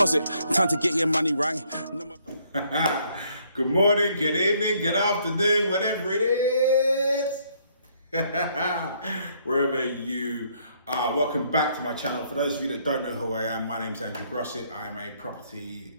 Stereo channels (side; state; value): both; inverted; correlation -0.68